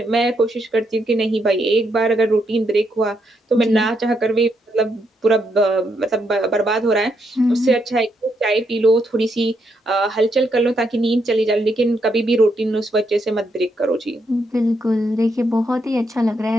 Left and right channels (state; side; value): normal; both; correlation 0.78